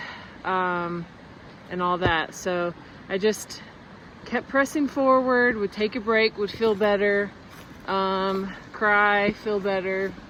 and all that. So I just kept pressing forward, would take a break, would feel better, cry, feel better,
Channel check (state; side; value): identical; both; correlation 1.00